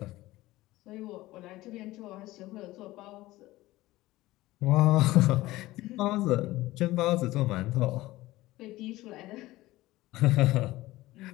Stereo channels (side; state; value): right; quieter; 17.8 dB